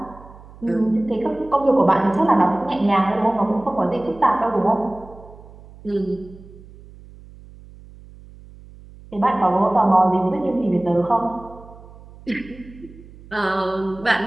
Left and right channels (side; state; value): right; noise; hum, 20 dB below the sound